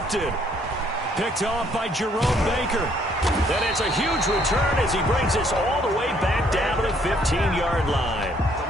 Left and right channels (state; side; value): normal; both; correlation 0.66